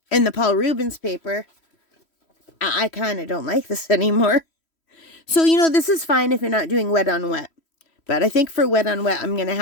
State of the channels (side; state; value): right; late; 3.1 ms